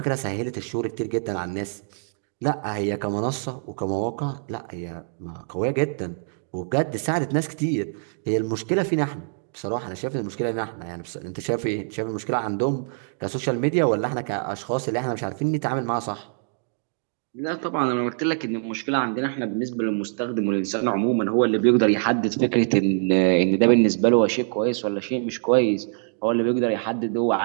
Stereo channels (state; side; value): silent; left; digital silence